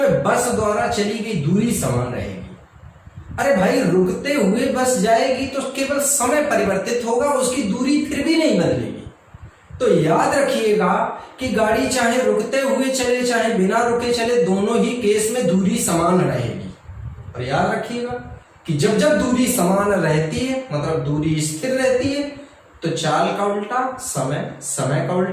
बस द्वारा चली गई दूरी समान रहेगी। अरे भाई रुकते हुए बस जाएगी तो केवल समय परिवर्तित होगा, उसकी दूरी फिर भी नहीं बदलेगी। तो याद रखिएगा कि गाड़ी चाहे रुकते हुए चले चाहे बिना रुके चले, दोनों ही केस में दूरी समान रहेगी। और याद रखिएगा कि जब जब दूरी समान रहती है मतलब दूरी स्थिर रहती है तो चाल का उल्टा समय, समय का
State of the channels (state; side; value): identical; both; correlation 1.00